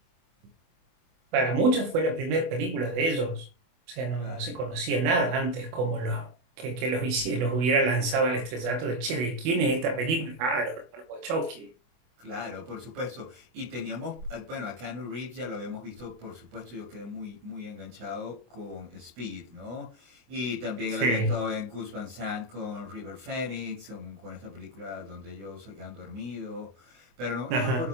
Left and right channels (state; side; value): late; left; 24 ms